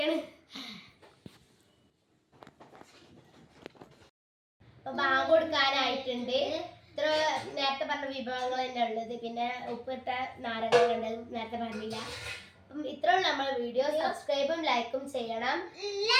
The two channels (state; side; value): identical; both; correlation 1.00